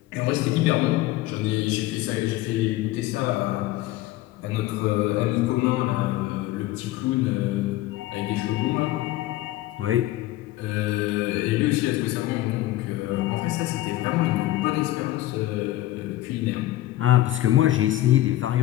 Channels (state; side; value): quieter; right; 15.7 dB